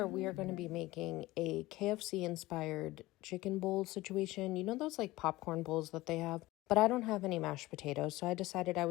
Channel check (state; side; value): quieter; right; 18.7 dB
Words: we are going to be making a KFC inspired chicken bowl situation. You know those like popcorn bowls that they have? But I don't have any mashed potatoes, so I decided I